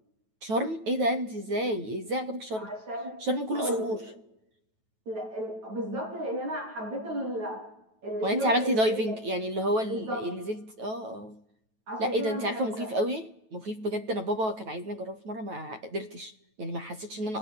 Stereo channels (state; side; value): late; left; 9.2 ms